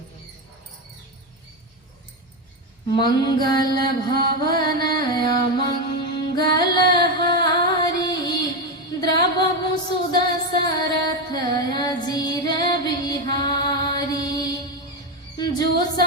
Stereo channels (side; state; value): both; normal; correlation 0.11